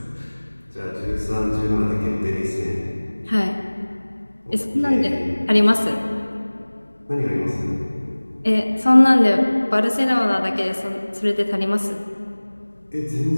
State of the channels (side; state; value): both; inverted; correlation -1.00